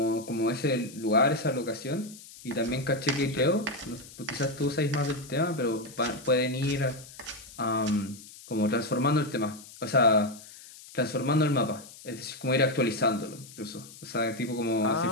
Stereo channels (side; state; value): left; noise; hiss, 18 dB below the sound